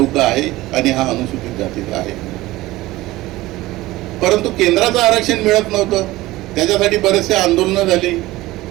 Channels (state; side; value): quieter; left; 18.2 dB